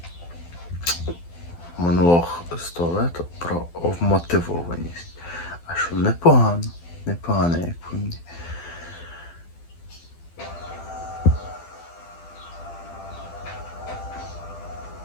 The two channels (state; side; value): late; right; 12 ms